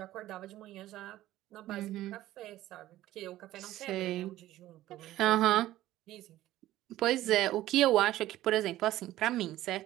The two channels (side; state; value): left; quieter; 14.9 dB